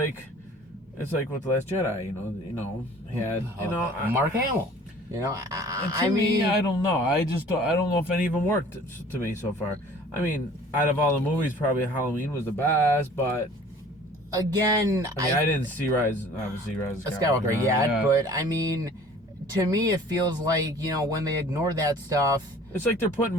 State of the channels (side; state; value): both; normal; correlation 0.49